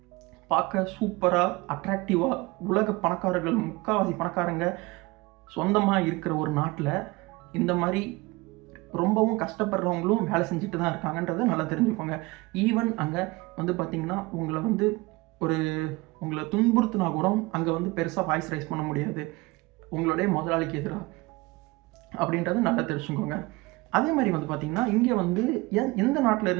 பார்க்க சூப்பராக அட்ராக்டிவாக உலக பணக்காரர்கள், முக்கால்வாசி பணக்காரங்க சொந்தமாக இருக்கிற ஒரு நாட்டில் இந்த மாதிரி ரொம்பவும் கஷ்டப்படுறவங்களும் வேலை செஞ்சுட்டு தான் இருக்காங்கன்றதை நல்லா தெரிஞ்சுக்கோங்க. ஈவன் அங்கே வந்து பார்த்திங்கன்னா உங்களை துன்புறுத்தினா கூட அங்கே வந்து பெருசாக வாய்ஸ் ரைஸ் பண்ண முடியாது உங்களுடைய முதலாளிக்கு எதிராக, அப்படின்றத நல்லா தெரிஞ்சுக்கோங்க. அதே மாதிரி வந்து பார்த்திங்கன்னா இங்கே வந்து எந்த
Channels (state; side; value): quieter; left; 22.9 dB